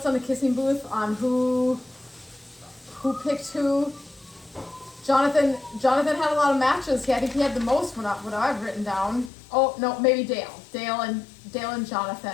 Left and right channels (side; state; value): right; drops out; at 9.3 s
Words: on the kissing booth on who picked who. Jonathan had a lot of matches. I think he had the most what I've written down. Oh, no, maybe Dale. Dale and